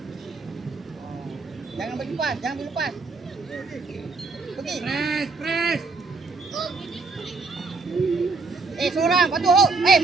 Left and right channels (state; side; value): quieter; left; 4.1 dB